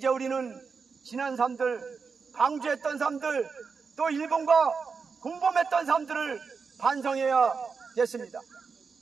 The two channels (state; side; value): quieter; left; 5.2 dB